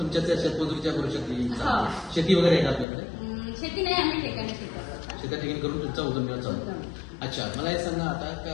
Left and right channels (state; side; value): drops out; right; at 2.9 s